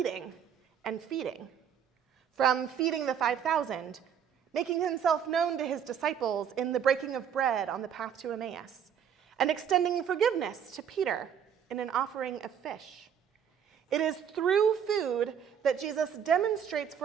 and feeding. From feeding the 5,000, making himself known to his disciples in the breaking of bread on the path to Emmaus, and extending forgiveness to Peter in an offering of fish. It is through food that Jesus demonstrates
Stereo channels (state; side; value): quieter; left; 8.3 dB